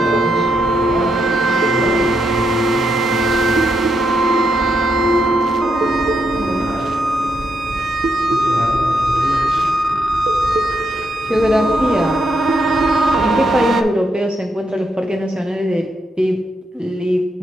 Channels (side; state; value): both; normal; correlation 0.80